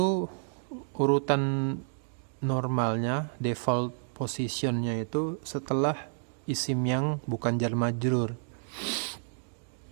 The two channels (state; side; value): silent; left; digital silence